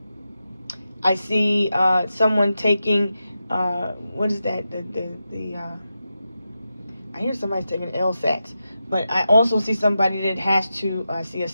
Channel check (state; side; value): inverted; both; correlation -0.90